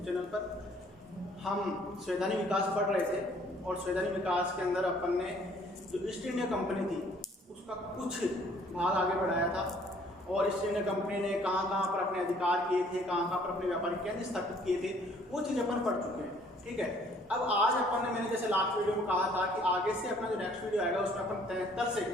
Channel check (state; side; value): normal; both; correlation 0.59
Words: चैनल पर। हम संवैधानिक विकास पढ़ रहे थे और संवैधानिक विकास के अंदर अपन ने जो ईस्ट इंडिया कंपनी थी उसका कुछ भाग आगे बढ़ाया था और ईस्ट इंडिया कंपनी ने कहाँ कहाँ पर अपने अधिकार किए थे, कहाँ कहाँ पर अपने व्यापारिक केंद्र स्थापित किए थे, वो चीज़ अपन पढ़ चुके हैं। ठीक है, अब आज अपन ने मैंने जैसे लास्ट वीडियो में कहा था कि आगे से अपना जो नेक्स्ट वीडियो आएगा उसमें अपन 73 से